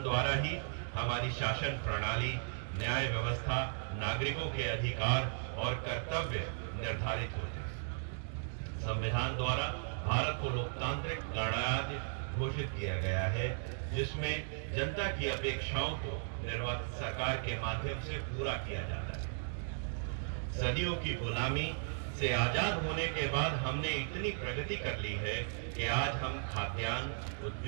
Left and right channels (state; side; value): silent; left; digital silence